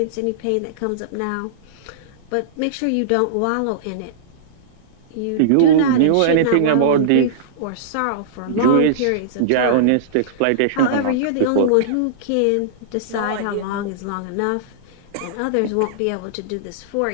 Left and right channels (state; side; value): different; both; correlation -0.03